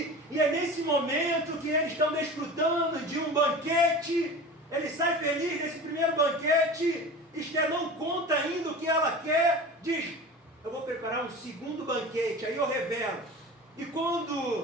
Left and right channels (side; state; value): both; normal; correlation 0.35